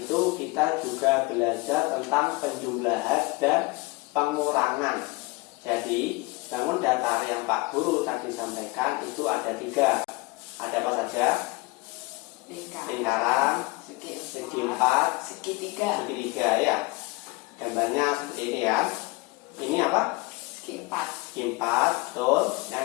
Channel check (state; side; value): quieter; right; 24.2 dB